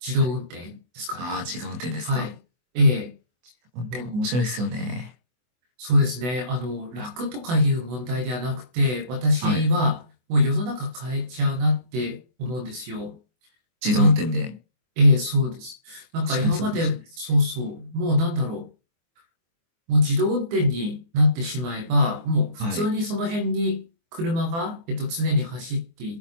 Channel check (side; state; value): left; late; 24 ms